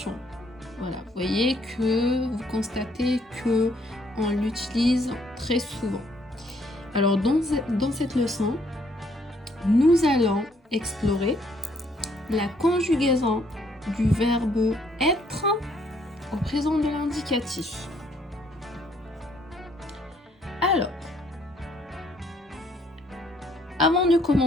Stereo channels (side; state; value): both; normal; correlation 0.67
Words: Voilà, vous voyez que vous constatez que on l'utilise très souvent. Alors dans cette leçon, nous allons explorer la conjugaison du verbe être au présent de l'indicatif. Alors, avant de